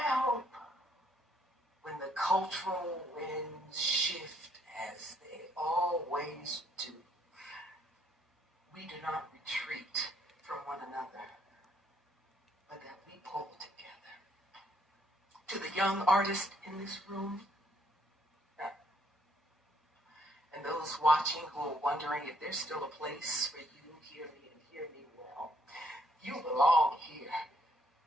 hope when the cultural winds shift as they always do, we do not retreat from one another, but that we pull together. To the young artists in this room, and those watching who are wondering if there's still a place for you, hear me and hear me well. You belong here.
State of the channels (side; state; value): both; normal; correlation 0.69